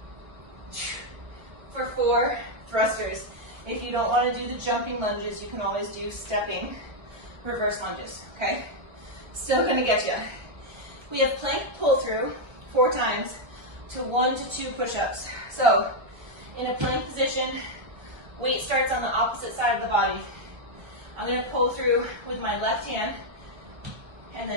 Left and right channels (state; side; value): late; left; 1.3 ms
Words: for 4 thrusters. If you don't want to do the jumping lunges, you can always do stepping reverse lunges, okay? Still gonna get you. We have plank pull through 4 times to 1 to 2 push-ups. So, in a plank position, weight starts on the opposite side of the body. I'm gonna pull through with my left hand and